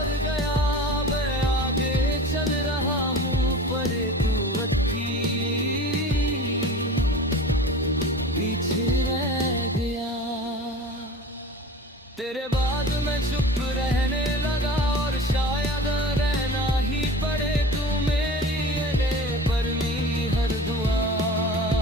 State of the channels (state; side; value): normal; both; correlation 0.37